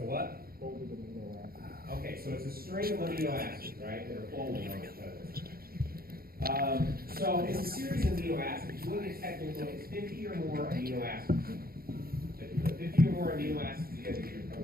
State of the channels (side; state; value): left; late; 0.43 ms